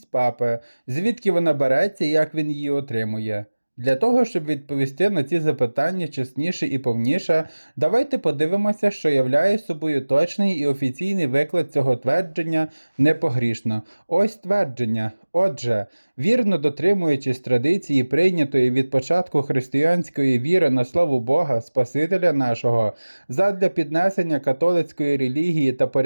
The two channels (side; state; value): both; inverted; correlation -1.00